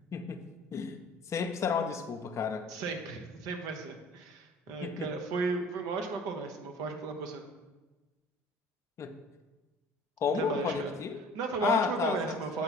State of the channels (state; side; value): normal; both; correlation 0.48